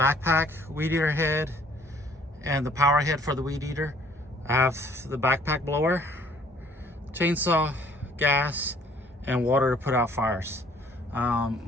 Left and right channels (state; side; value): normal; both; correlation 0.59